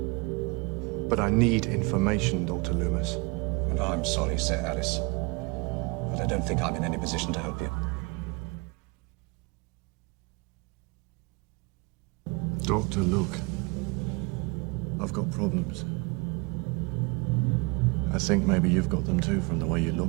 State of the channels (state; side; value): quieter; left; 29.1 dB